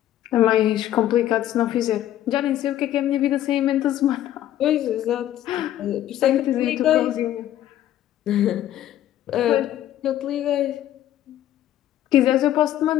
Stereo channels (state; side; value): quieter; right; 12.4 dB